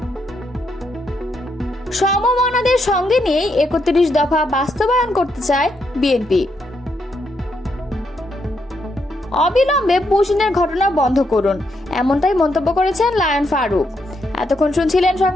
সমমনাদের সঙ্গে নিয়ে 31 দফা বাস্তবায়ন করতে চায় বিএনপি। অবিলম্বে পুশিনের ঘটনা বন্ধ করুন, এমনটাই মন্তব্য করেছেন লায়ন ফারুক। এতক্ষণ শুনছিলেন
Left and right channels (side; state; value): both; normal; correlation 0.78